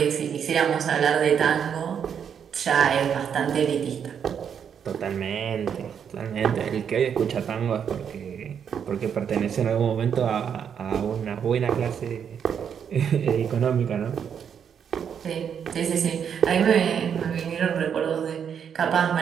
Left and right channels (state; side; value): quieter; left; 7.8 dB